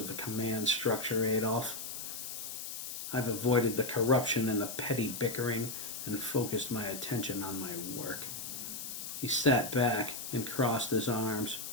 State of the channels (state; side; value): noise; left; hiss, 7 dB below the sound